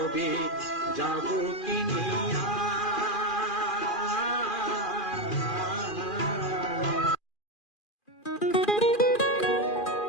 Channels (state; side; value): late; right; 2.4 ms